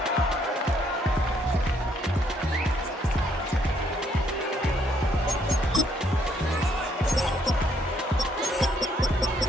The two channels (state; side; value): normal; both; correlation 0.70